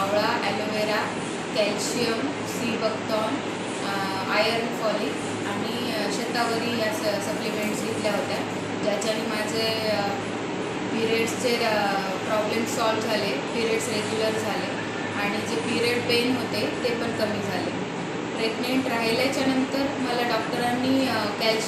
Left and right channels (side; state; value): both; identical; correlation 1.00